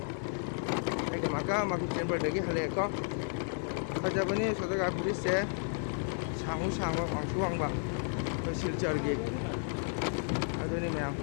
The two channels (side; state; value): right; silent; 56 dB below the other